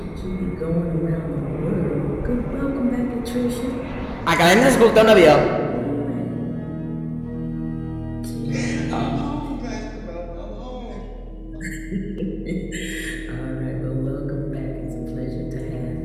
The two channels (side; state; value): both; identical; correlation 1.00